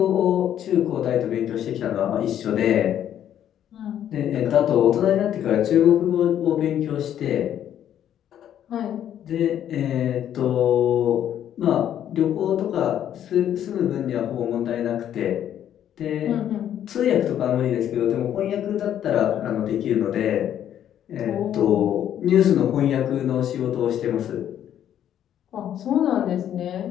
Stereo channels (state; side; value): quieter; right; 10.4 dB